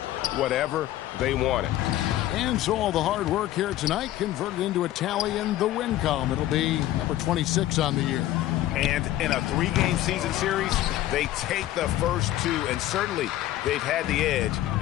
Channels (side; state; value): right; quieter; 14.1 dB